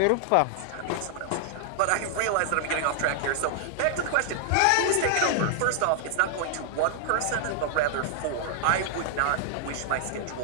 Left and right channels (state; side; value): different; both; correlation 0.00